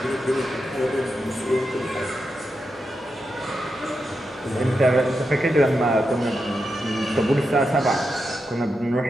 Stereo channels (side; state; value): both; normal; correlation 0.87